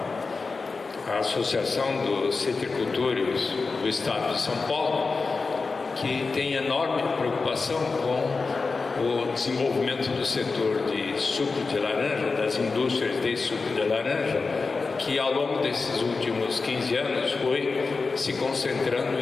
a Associação dos Citricultores do Estado de São Paulo, que tem enorme preocupação com o desenvolvimento do setor de suco de laranja, das indústrias de suco de laranja, que ao longo desses últimos 15 anos foi se concentrando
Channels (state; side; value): quieter; right; 4.2 dB